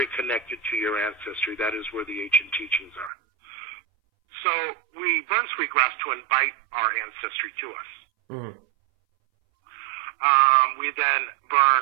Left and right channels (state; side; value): drops out; left; at 3.1 s